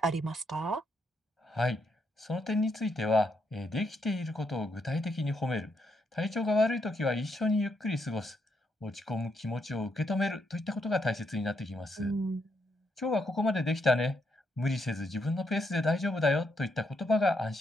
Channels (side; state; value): both; normal; correlation 0.78